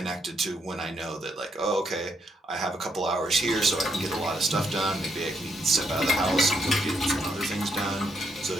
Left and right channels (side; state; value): both; normal; correlation 0.76